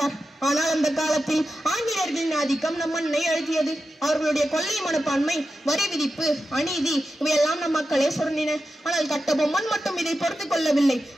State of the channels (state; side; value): normal; both; correlation 0.90